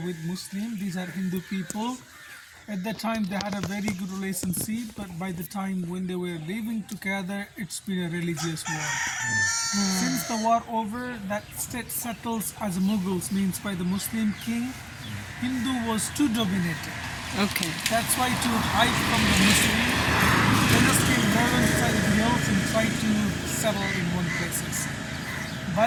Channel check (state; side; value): identical; both; correlation 1.00